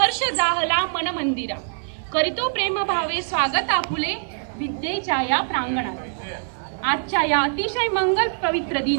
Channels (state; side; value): silent; left; digital silence